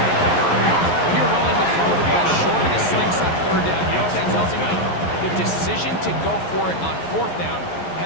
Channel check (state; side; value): late; right; 11 ms